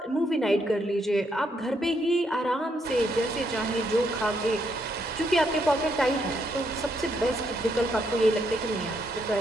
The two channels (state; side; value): normal; both; correlation 0.75